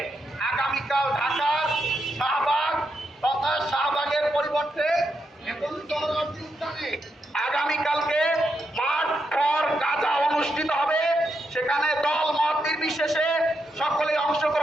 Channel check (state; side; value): normal; both; correlation 0.83